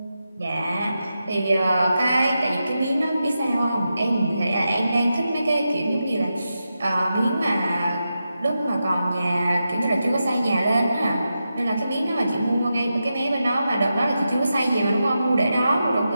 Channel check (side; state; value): both; inverted; correlation -0.89